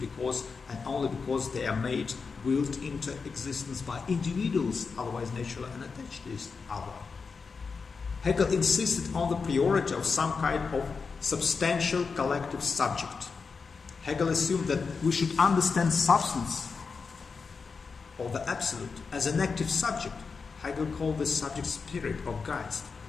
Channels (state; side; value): quieter; right; 5.0 dB